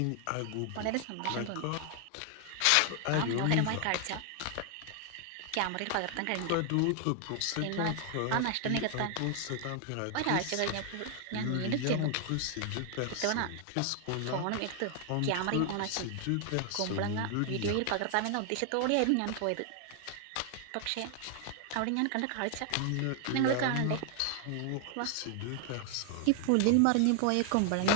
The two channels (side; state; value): both; different; correlation 0.00